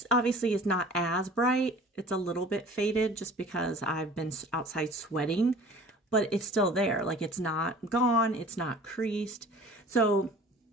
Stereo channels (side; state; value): both; normal; correlation 0.46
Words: obviously is not as bright. It's a little bit faded just because I've been outside sweating. But it's still there. Like, it's not gone. It's not creased. So